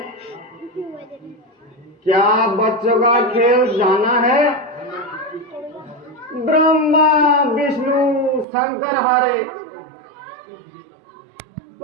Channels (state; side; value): drops out; left; at 8.5 s